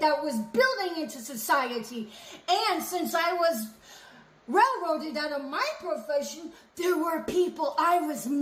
was building into society. And since I was railroaded out of my profession, there were people I was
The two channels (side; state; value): both; identical; correlation 1.00